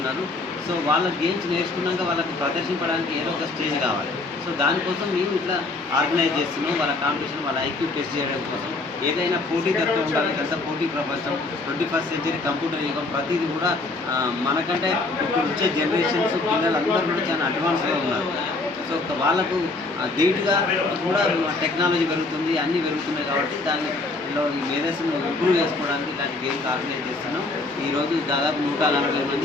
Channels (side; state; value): right; quieter; 3.4 dB